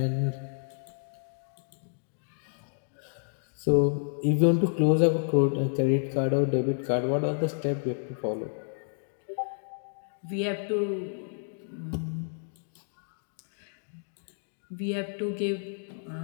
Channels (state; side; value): silent; right; digital silence